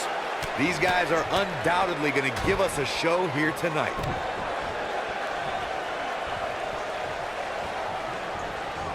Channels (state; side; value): identical; both; correlation 1.00